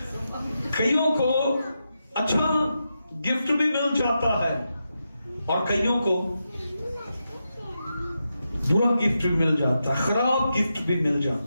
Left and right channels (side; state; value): both; inverted; correlation -0.87